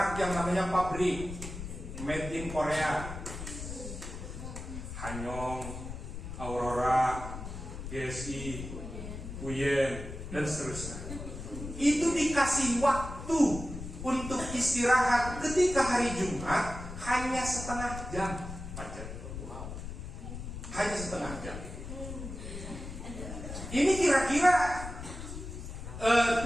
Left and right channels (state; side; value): noise; left; rumble, 9 dB below the sound